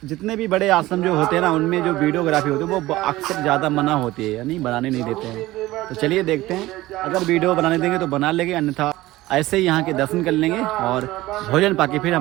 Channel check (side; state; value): left; quieter; 17.6 dB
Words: जितने भी बड़े आश्रम जो होते हैं ना, उनमें जो वीडियोग्राफी होती है वो अक्सर ज़्यादा मना होती है, यानी बनाने नहीं देते हैं। तो चलिए देखते हैं, अगर वीडियो बनाने देंगे तो बना लेंगे, अन्यथा ऐसे ही यहाँ के दर्शन कर लेंगे और भोजन पाके फिर